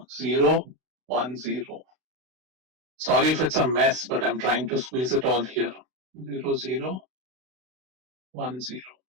0, 1, 0. Sorry if it's a mess, but I'm trying to squeeze it all here. 0, 0, 1, 0.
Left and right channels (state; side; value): late; left; 32 ms